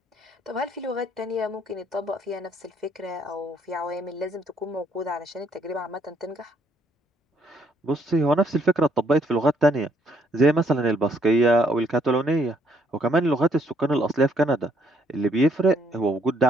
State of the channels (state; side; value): normal; both; correlation 0.69